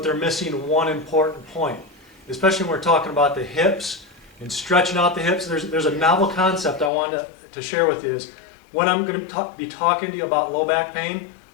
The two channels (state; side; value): drops out; right; at 6.9 s